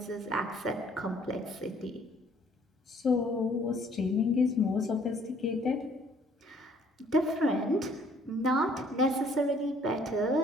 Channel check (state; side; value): normal; both; correlation 0.60